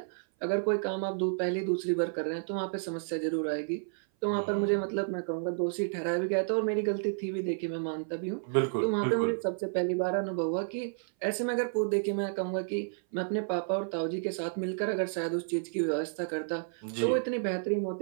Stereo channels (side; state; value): left; silent; 57 dB below the other